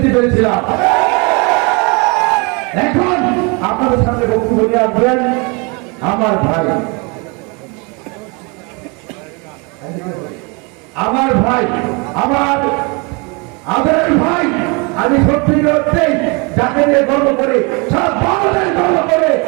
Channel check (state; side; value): quieter; left; 30.5 dB